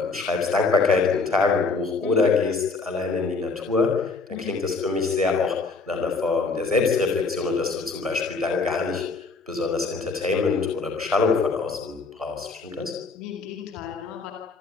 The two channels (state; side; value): quieter; right; 4.2 dB